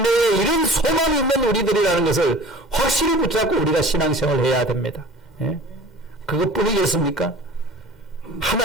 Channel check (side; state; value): both; normal; correlation 0.43